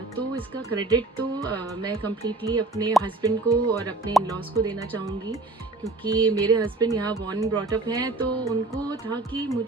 तो इसका क्रेडिट तो मैं कम्प्लीटली अपने हस्बैंड को और अपने इन-लॉज को देना चाहूँगी क्योंकि मेरे हस्बैंड यहाँ बॉर्न एंड ब्रॉट अप हैं. तो उनको था कि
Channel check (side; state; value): left; quieter; 3.3 dB